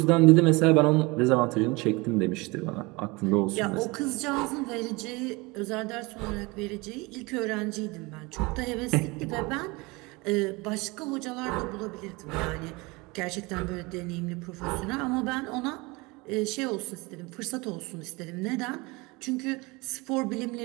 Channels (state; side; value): quieter; left; 25.0 dB